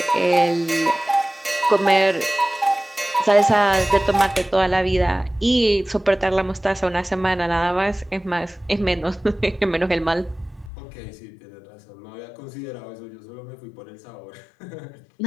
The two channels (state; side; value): drops out; right; at 10.7 s